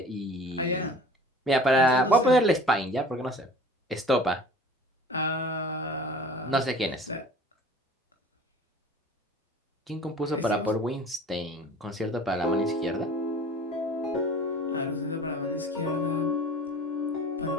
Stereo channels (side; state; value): both; normal; correlation 0.45